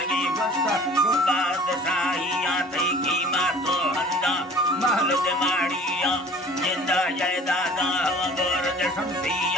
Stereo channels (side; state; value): both; normal; correlation 0.46